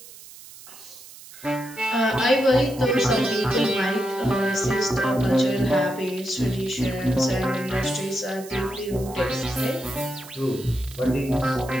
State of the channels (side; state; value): right; noise; hiss, 18 dB below the sound